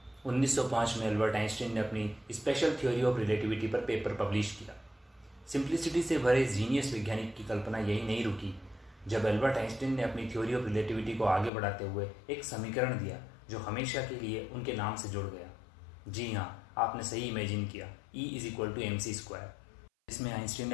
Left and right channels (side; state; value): right; drops out; at 11.5 s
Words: 1905 में अल्बर्ट आइंस्टीन ने अपनी स्पेशल थ्योरी ऑफ रिलेटिविटी पर पेपर पब्लिश किया। सिंप्लिसिटी से भरे जीनियस वैज्ञानिक की कल्पना यही नहीं रुकी जब अल्बर्ट आइंस्टीन ने अपनी थ्योरी ऑफ रिलेटिविटी को आगे बढ़ाते हुए एक समीकरण दिया जो हमेशा के लिए उनके नाम से जुड़ गया। जी हाँ, आपने सही इमेजिन किया, E = mc²। इसमें आइंस्टीन